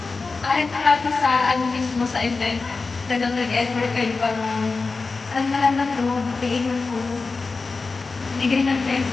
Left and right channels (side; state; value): right; quieter; 4.1 dB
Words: Kahit marami sa ano mismo sa event, talagang nag-effort kayo para ang lahat na ito, bigay ng puno. Bigay ng